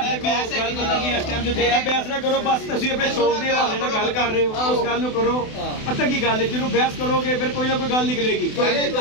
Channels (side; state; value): right; late; 28 ms